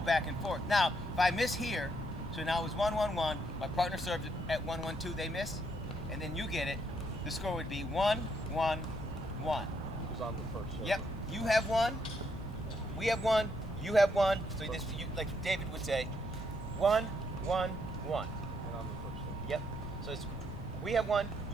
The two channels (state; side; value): noise; left; rumble, 11 dB below the sound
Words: back and forth. Now, if I miss here, so now it was 1-1-1, my partner served at 1-1-2, they miss, and then you get it, the score would be 1-1-1. Who's on the first server? Yep. You have 1, we have 1, you have 1. So like David would say, 1-1-1. And I'm the first server. Yep. So it's we have 1,